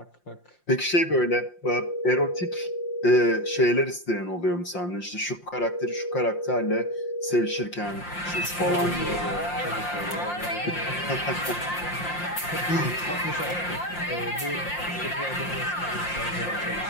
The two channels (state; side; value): late; right; 5.7 ms